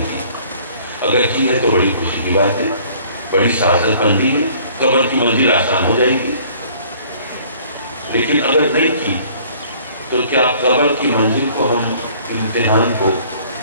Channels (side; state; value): both; inverted; correlation -0.55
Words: کی؟ اگر کی ہے تو بڑی خوشی کی بات ہے، بڑی سعادت مندی ہے، قبر کی منزل آسان ہو جائے گی. لیکن اگر نہیں کی تو کیا قبر کی منزل کو ہم امتحان کو